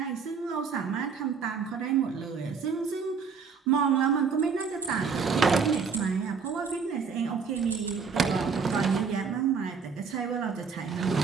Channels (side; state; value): left; quieter; 5.7 dB